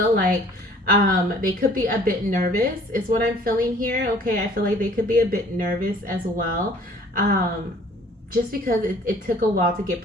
like they could be a bit nervous is what I'm feeling here. Okay. I feel like they could be a bit nervous as well. Just because it took a while to get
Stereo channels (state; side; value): normal; both; correlation 0.54